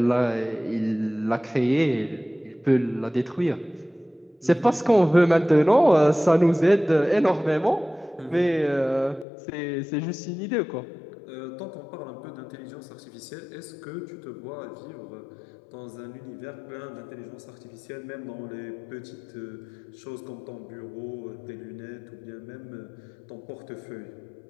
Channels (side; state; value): right; drops out; at 9.2 s